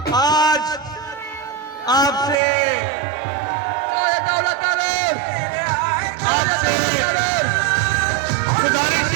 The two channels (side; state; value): left; drops out; at 2.4 s